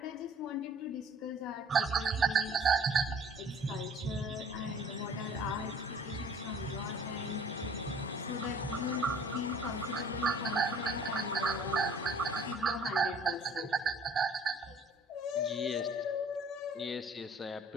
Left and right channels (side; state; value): both; normal; correlation 0.52